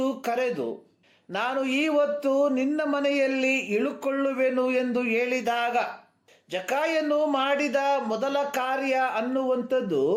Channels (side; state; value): both; identical; correlation 1.00